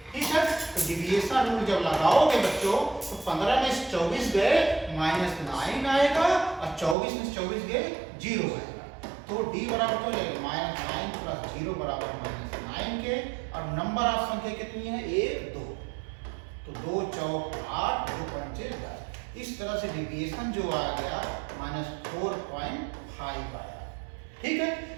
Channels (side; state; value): left; drops out; at 7.0 s